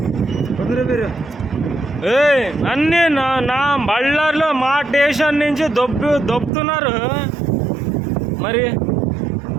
నన్ను నా బళ్ళారిలో మా స్టేషన్ నుంచి దొబ్బుతున్నారు. మరి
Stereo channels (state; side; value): drops out; left; at 6.5 s